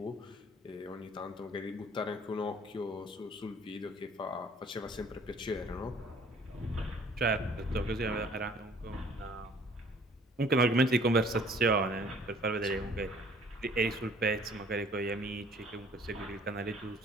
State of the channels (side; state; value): both; normal; correlation 0.56